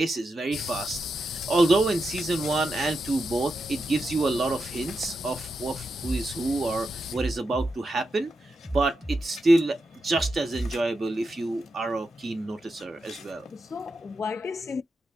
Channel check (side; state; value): both; normal; correlation 0.87